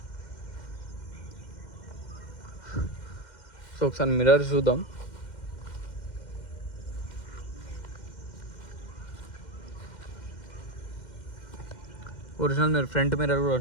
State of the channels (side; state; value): right; late; 2.1 ms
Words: సో ఒకసారి మిర్రర్ చూద్దాం. ఒరిజినల్ మిర్రర్, ఫ్రంట్ మిర్రర్ కూడా